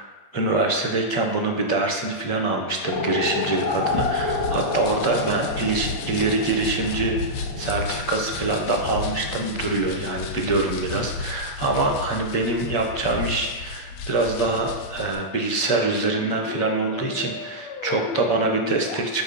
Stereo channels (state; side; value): late; right; 8.5 ms